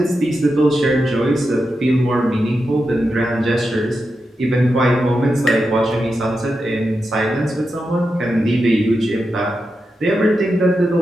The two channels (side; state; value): both; normal; correlation 0.88